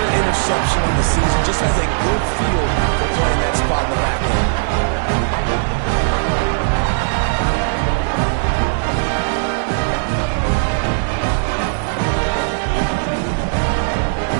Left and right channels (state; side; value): silent; left; digital silence